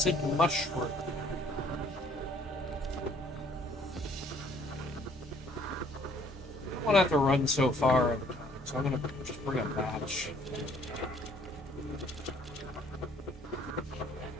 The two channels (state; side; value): normal; both; correlation 0.61